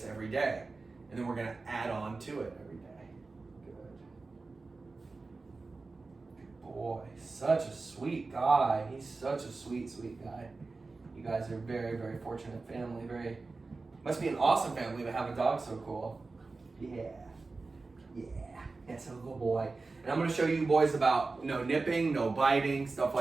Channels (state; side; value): quieter; left; 3.8 dB